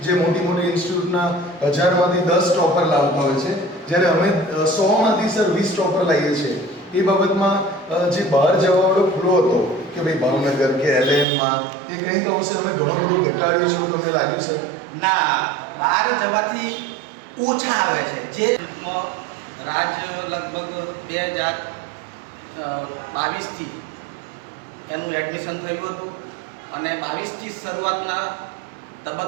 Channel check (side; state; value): left; drops out; at 11.2 s